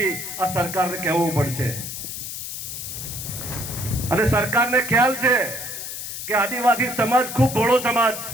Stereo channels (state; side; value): noise; left; hiss, 7 dB below the sound